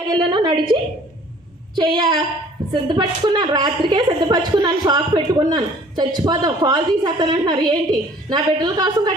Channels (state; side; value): normal; both; correlation 0.53